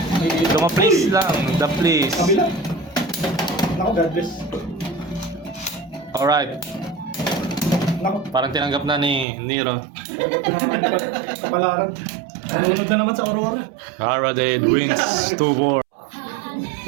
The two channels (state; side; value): drops out; left; at 9.2 s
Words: Luma please lang. The please. Kabila. Naku, God bless. Alright. Naku, Parang tinanggap na ni Nero. kapalaran. Nalunod na naman sa Aurora. Arade wins 2-4.